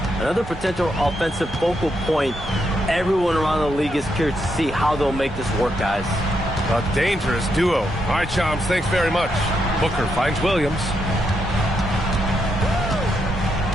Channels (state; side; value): normal; both; correlation 0.80